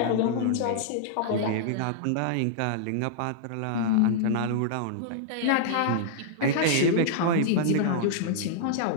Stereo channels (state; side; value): different; both; correlation -0.01